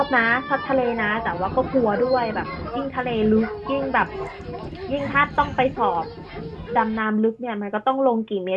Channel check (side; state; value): both; identical; correlation 1.00